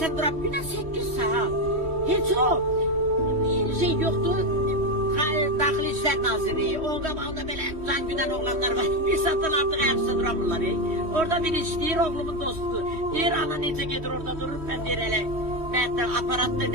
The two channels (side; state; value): left; late; 3.1 ms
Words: duraq, günə 8 saat. Heç o şey yoktu. Daxili İşlər Naziri, orada belə can güdən oğlanlar var. Bir satın artıq ayaqsa duramırlar. Orada bir işləyir, oğlumun dostu. Deyir, ana necə gedir orada durur, ben deyir elə. Məhətdə aparatda